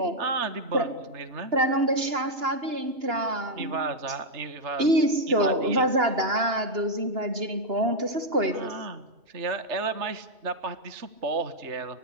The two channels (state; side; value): late; left; 2.9 ms